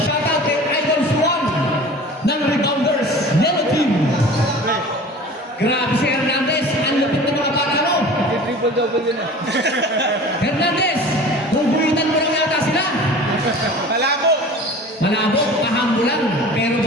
kay Idol Swan ng Rebounders, Yellow Team. Grabe si Hernandez, ang lupit ng mga bata mo. Triple-double yun ah. Hernandez, huguitan mo lang yata sila. Malabo! Malabo, pahambo lang, pero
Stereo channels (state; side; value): normal; both; correlation 0.40